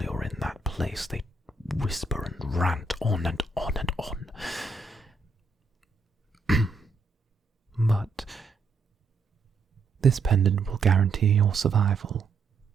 you're in that place. They whisper and rant on and on and on. But this pendant will guarantee your survival,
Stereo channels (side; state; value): left; quieter; 3.8 dB